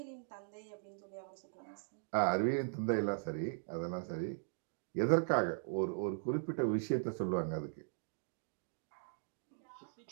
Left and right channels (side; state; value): left; silent; digital silence